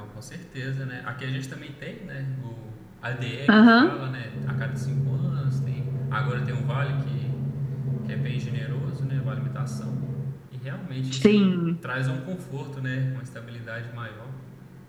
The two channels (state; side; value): identical; both; correlation 1.00